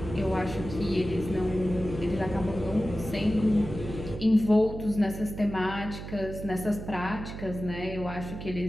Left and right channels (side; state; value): right; noise; hum, 9 dB below the sound